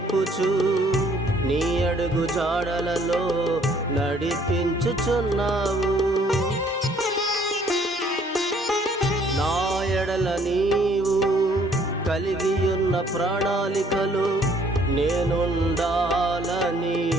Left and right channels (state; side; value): normal; both; correlation 0.61